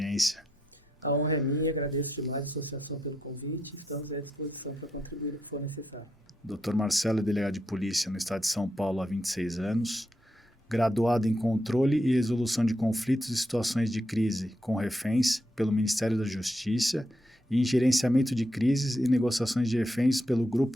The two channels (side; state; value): both; normal; correlation 0.81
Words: A honra é minha, agradeço demais a associação pelo convite, estamos à disposição para contribuir no que for necessário. Dr. Marcelo é delegado de polícia no estado de São Paulo há 26 anos, graduado em Controle e Resolução de Conflitos e Situações de Crise com Reféns pelo Ministério da Justiça e em Gerenciamento de Crises e Negociações de Reféns pelo